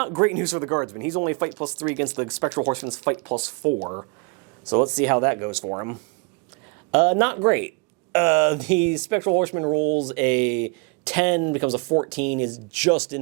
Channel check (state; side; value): quieter; left; 32.6 dB